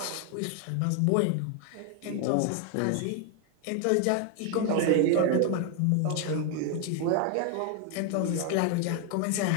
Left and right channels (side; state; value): both; different; correlation 0.00